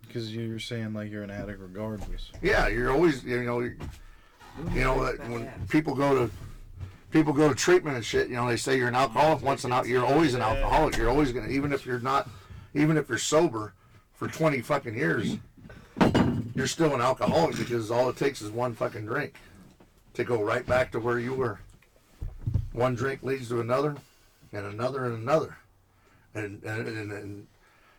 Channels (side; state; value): both; identical; correlation 1.00